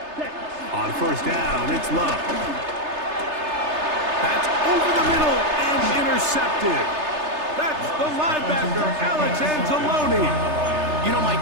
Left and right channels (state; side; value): late; left; 3.3 ms